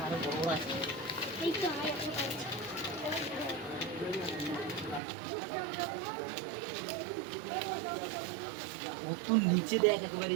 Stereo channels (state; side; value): drops out; left; at 5.0 s